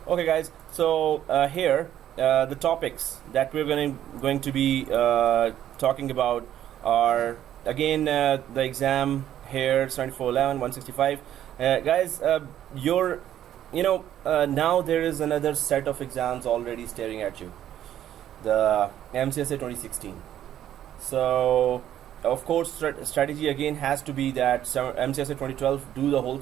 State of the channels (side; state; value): left; quieter; 11.3 dB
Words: Okay, guys. So here the topics that we're going to be talking about are again the exam here, 7411 165. Guys, now there is another set of exams already staring at you, the MCSA 2016. So of course strategy again has to be that MCSA 2012 do the whole